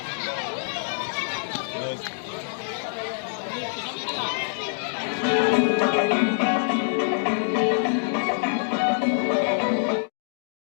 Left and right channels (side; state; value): right; silent; digital silence